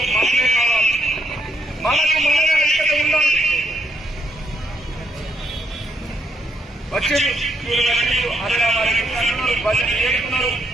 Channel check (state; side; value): normal; both; correlation 0.75